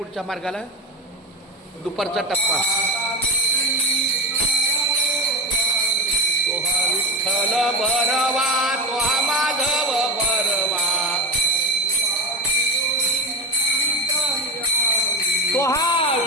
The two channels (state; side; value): normal; both; correlation 0.17